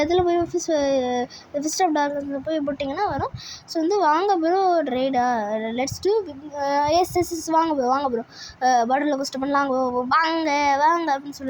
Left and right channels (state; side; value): identical; both; correlation 1.00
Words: போய் ஃபிஸ்ட் ஆஃப் டார்க்னஸில் போய் போட்டிங்கன்னா வரும். ஸோ வந்து வாங்க ப்ரோ ரைடா லெட்ஸ் டூ எஸ் வாங்க ப்ரோ பாட்டிலில் ஃபஸ்ட்டு பண்ணலாம் வாங்க அப்படின்னு